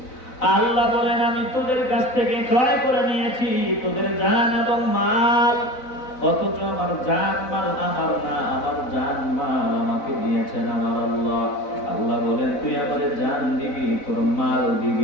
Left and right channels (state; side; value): late; right; 4.0 ms